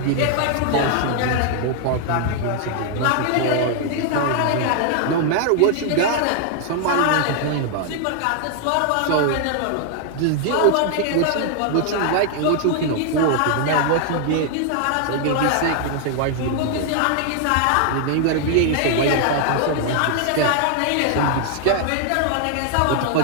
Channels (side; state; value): both; different; correlation 0.00